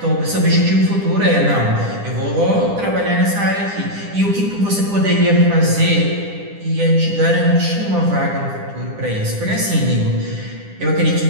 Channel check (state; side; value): late; left; 10 ms